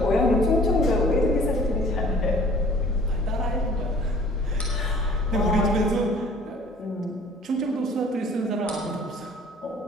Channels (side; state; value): both; normal; correlation 0.52